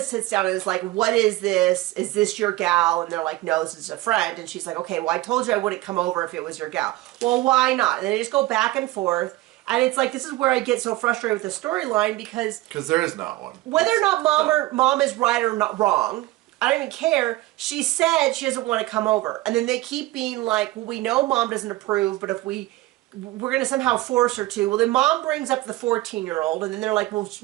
sits down and is like, what is this? Is this your gal? And they're like, no, this is a friend. And she's like, okay, well, I told you I wouldn't come over if it was your gal. Well, why not? And they just go back and forth. And it's like, this is where I get so frustrated with the storyline because there is not one. Whether or not mom is right or not wrong, I don't even care. She said she doesn't want to come over. And then they keep being like, well, we know mom doesn't approve, but if we're going to somehow force her to. Well, then mom brings up the 14-year-old, and then they're like, well,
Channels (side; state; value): left; quieter; 18.2 dB